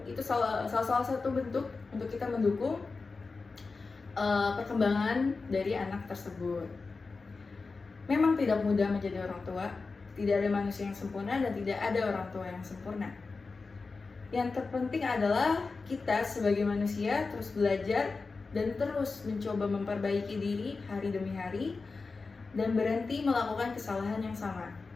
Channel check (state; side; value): quieter; right; 4.2 dB